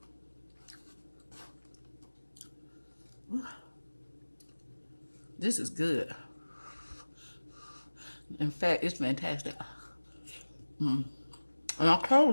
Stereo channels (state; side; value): inverted; both; correlation -1.00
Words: This is good. In fact, it's fantastic. And I